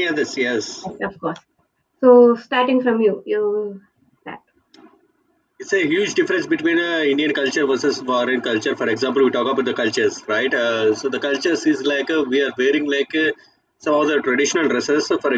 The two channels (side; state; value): both; identical; correlation 1.00